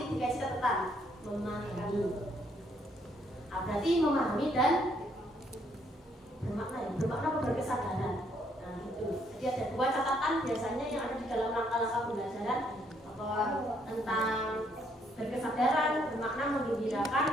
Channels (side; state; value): both; normal; correlation 0.70